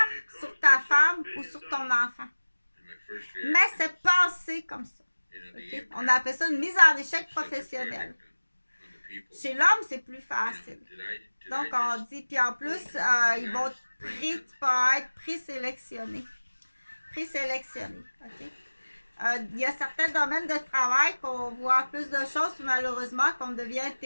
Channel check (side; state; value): both; inverted; correlation -1.00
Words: sur ta femme ou sur ton enfant. Mais c'est passé comme ça. Okay? On appelle ça une mise en échec professionnelle. Chez l'homme, c'est plus facile. Donc, on dit, puis en plus, ils vont tu peux être présélectionné. Présélectionné. OK? Il y a certains domaines de travail qu'on voit plus de choses, puis malheureusement, qu'on devient